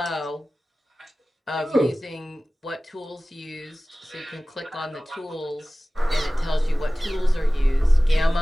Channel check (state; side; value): normal; both; correlation 0.97